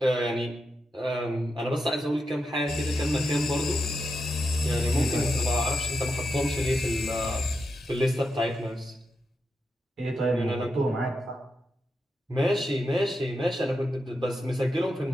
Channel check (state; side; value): normal; both; correlation 0.86